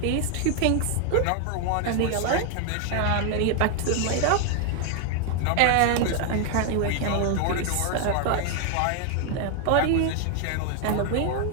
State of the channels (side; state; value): both; different; correlation 0.00